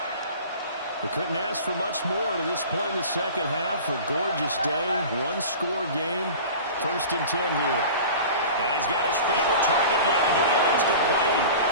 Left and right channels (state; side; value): inverted; both; correlation -0.38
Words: They couldn't ask for much more to this point in the second half. A gorgeous day, one-score game. First and 10 here. And he's got his favorite target yet again. It's complete.